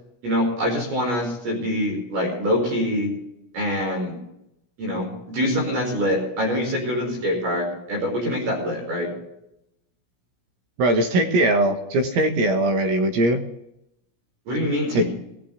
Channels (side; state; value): left; late; 17 ms